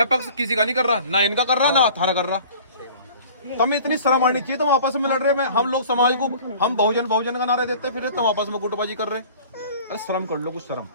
पक्ष किसी का नहीं कर रहा, ना इनका कर रहा, ना थारा कर रहा। तुम्हें इतनी शर्म आनी चाहिए, तुम आपस में लड़ रहे हैं। हम लोग समाज को, हम बहुजन का नारे देते फिर तुम आपस में गुटबाजी कर रहे। अरे शर्म कर लो, कुछ शर्म,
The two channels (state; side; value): inverted; both; correlation -0.46